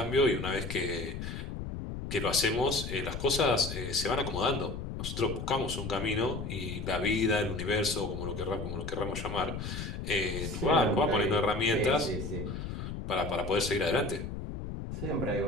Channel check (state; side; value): noise; left; rumble, 6 dB below the sound